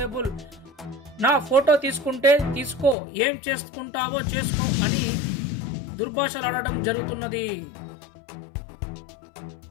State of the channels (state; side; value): drops out; right; at 3.0 s